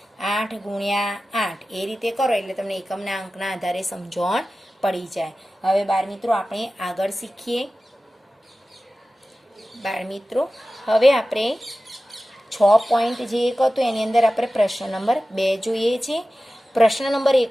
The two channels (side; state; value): both; normal; correlation 0.95